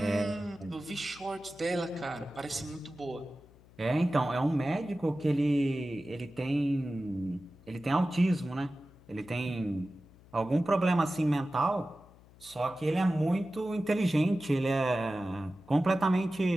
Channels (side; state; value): left; noise; hum, 25 dB below the sound